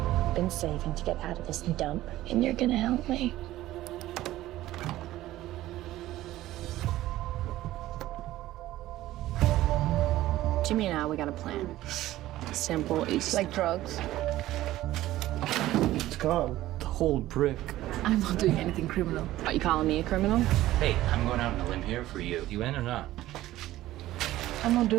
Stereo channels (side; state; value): left; quieter; 15.3 dB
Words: Been saving to get out of this dump, and you're gonna help me. Jimmy and I, we got a plan. Simple, easy. Like drugs. It's gone. The whole brick. I'm not doing anything criminal. Are you calling me a criminal? Hey, I'm going out on a limb here for you. You in or not? I'm not